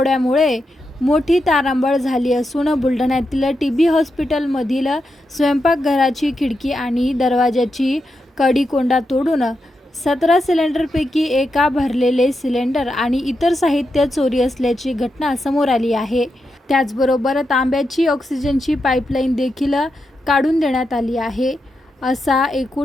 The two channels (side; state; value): both; normal; correlation 0.86